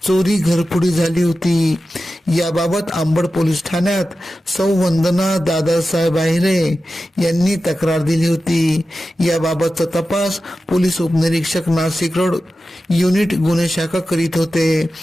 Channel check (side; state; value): both; normal; correlation 0.93